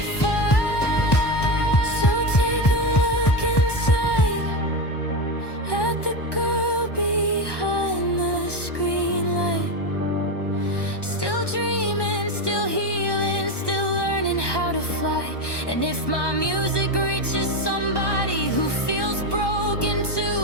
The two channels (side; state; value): right; late; 1.2 ms